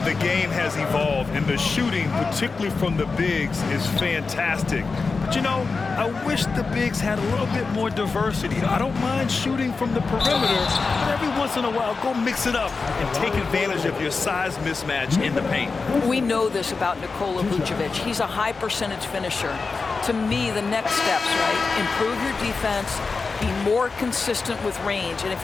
game has evolved, and the shooting, particularly from the bigs, is fantastic. But, you know, I wish the bigs had a little bit more diversity. I don't mind shooting from the perimeter, but every once in a while, go mix it up and take advantage of your size mismatch in the paint. We know this about Nikola Vucevic. He's a high percentage finisher. To me, the next steps, right? Improve your defense, be more consistent with range, and if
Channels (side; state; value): right; quieter; 4.4 dB